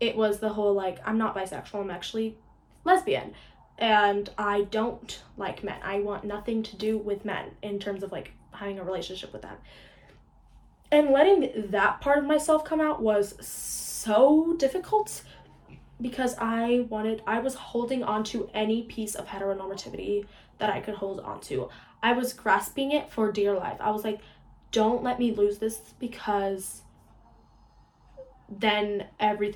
was the whole, like, I'm not bisexual, I'm actually lesbian, and I don't like men. I want nothing to do with men in terms of, like, having a relationship with them. And letting that part of myself come out was so difficult, because I was holding on to any piece of heteronormativity that I could hold on to. I was grasping it for dear life. I was like, don't let me lose this, because then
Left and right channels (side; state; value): both; identical; correlation 1.00